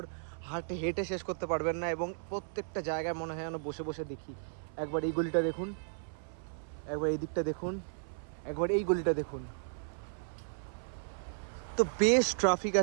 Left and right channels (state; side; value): silent; left; 55 dB below the other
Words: হেঁটে শেষ করতে পারবেন না, এবং প্রত্যেকটা জায়গায় মনে হয় যেন বসে বসে দেখি। একবার এই গলিটা দেখুন, একবার এই দিকটা দেখুন, একবার এই গলিটা দেখুন। তো বেশ ট্রাফিক